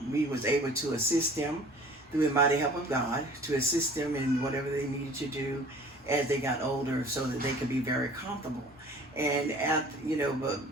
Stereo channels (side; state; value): both; normal; correlation 0.47